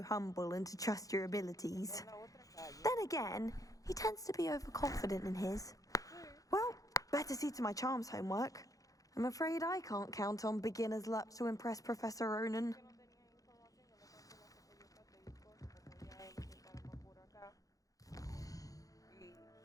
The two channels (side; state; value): right; late; 0.17 ms